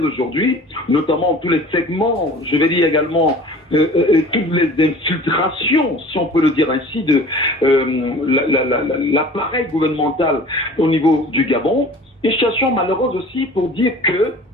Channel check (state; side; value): normal; both; correlation 0.44